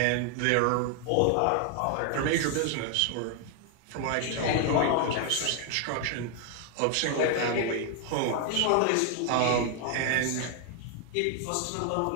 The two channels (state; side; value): different; both; correlation 0.00